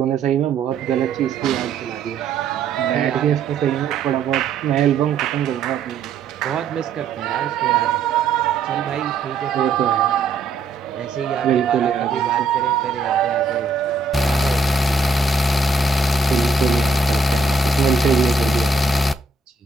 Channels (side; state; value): left; quieter; 4.2 dB